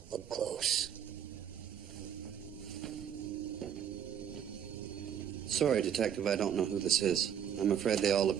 Look close. Sorry, Detective, I don't know who this is. I'm afraid they all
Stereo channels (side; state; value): left; quieter; 8.9 dB